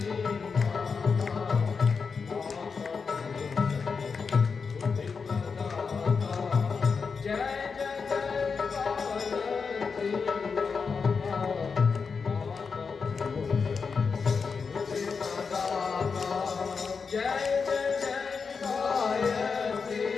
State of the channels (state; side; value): quieter; right; 5.3 dB